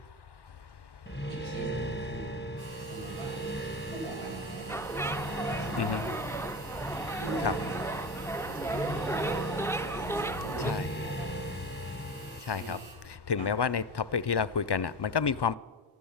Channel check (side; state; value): both; normal; correlation 0.25